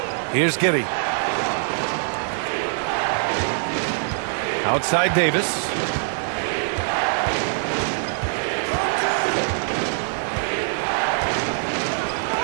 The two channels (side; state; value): left; silent; digital silence